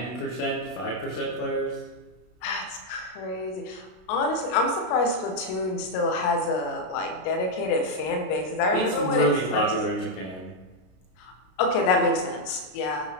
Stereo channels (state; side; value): late; right; 32 ms